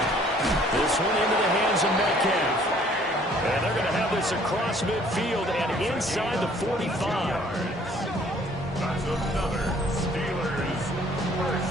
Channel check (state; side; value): normal; both; correlation 0.58